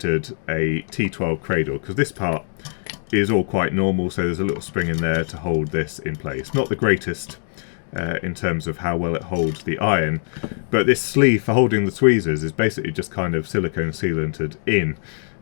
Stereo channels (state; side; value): silent; right; digital silence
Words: a T12 cradle, because this part is all quite normal, so there's a little spring in there to hold this in place. Not the greatest in terms of how well it holds the iron, but this sleeve for holding the tweezers is basically just kind of silicone sealanted in.